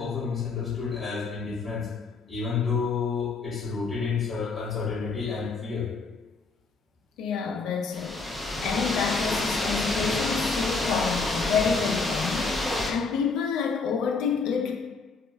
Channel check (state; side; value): quieter; right; 4.4 dB